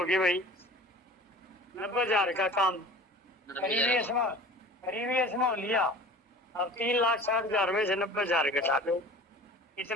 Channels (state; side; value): normal; both; correlation 0.42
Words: गए भाई? 90,000 का काम प्रीवियस में हो लिया। अब 3,60,000 में से 90,000 घटा दो,